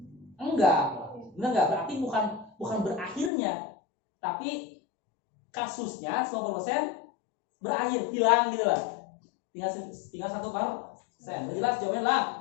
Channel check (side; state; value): right; drops out; at 3.3 s